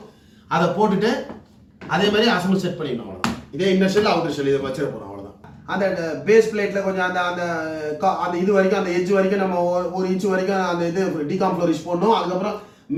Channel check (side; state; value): both; identical; correlation 1.00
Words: அதை போட்டுட்டு அதே மாதிரி அசம்பிள் செட் பண்ணிடணும். அவ்வளோதான். இதே இன்னர் ஷெல் அவுட்டர் ஷெல் இதை வச்சிட போகிறோம். அவ்வளோதான். அந்த பேஸ் பிளேட்டில் கொஞ்சம் அந்த அந்த அந்த இது வரைக்கும் அந்த எட்ஜ் வரைக்கும் நம்ம 1 இன்ச்சு வரைக்கும் அந்த இது டிகாம் ஃப்ளோரிஷ் போடணும். அதுக்கப்புறம்